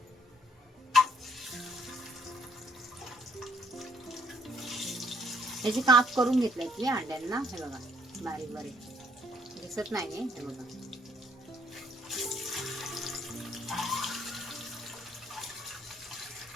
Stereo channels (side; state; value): both; normal; correlation 0.66